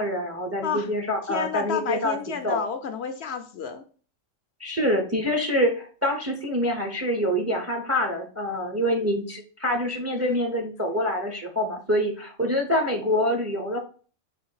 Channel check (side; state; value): both; normal; correlation 0.05